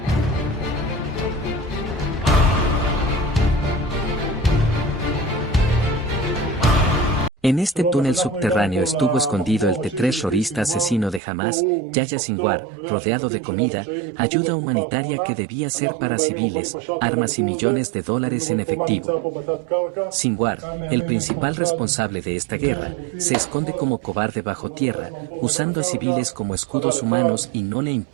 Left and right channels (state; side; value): drops out; left; at 11.2 s